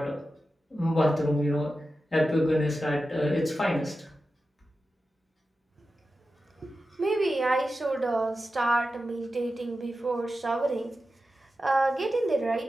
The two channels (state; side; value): normal; both; correlation 0.92